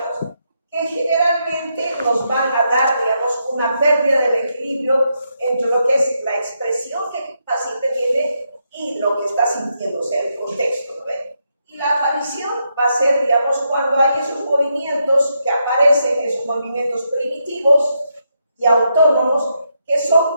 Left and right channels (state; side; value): inverted; both; correlation -0.81